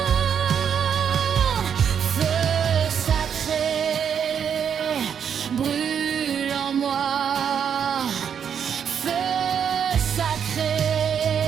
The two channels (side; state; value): left; quieter; 7.8 dB